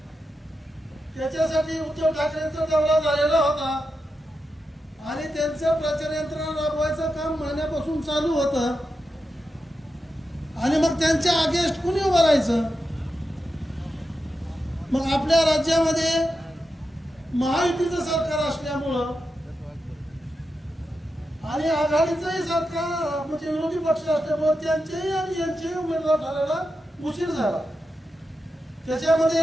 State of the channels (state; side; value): normal; both; correlation 0.89